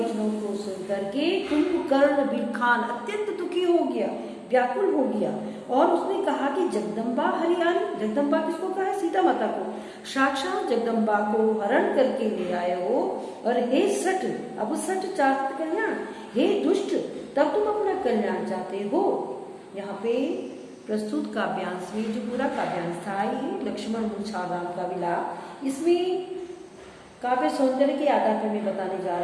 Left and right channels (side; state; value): both; identical; correlation 1.00